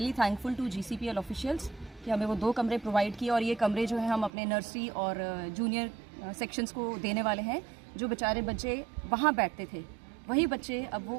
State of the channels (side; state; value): left; drops out; at 4.3 s